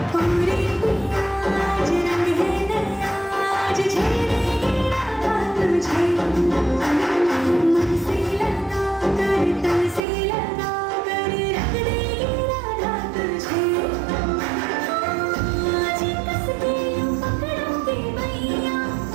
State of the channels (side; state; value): left; drops out; at 10.0 s